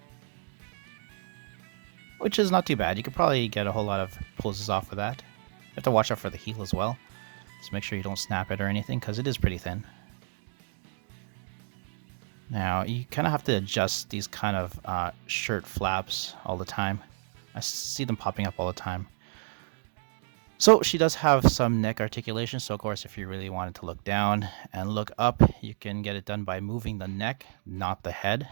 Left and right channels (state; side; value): silent; left; digital silence